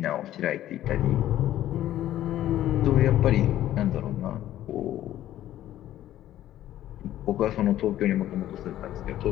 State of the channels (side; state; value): right; quieter; 13.0 dB